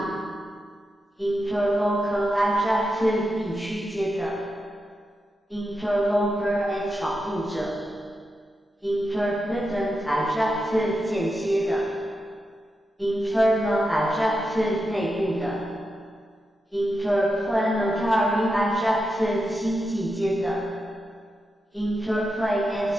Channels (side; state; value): both; normal; correlation 0.87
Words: Interlocal adjective 地区间的 Interloper and 闯入者 intermittent adjective 间歇的 internal adjective 内部的 interplanetary adjective 星际间的 interplay and